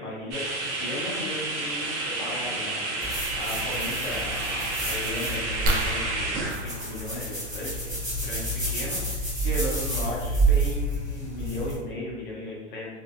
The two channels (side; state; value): both; normal; correlation 0.23